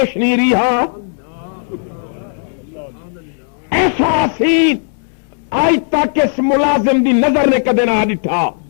نہیں رہا ایسا حسین آج تک اس ملازم دی نظر نے کدے نہ ڈٹھا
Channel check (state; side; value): silent; right; digital silence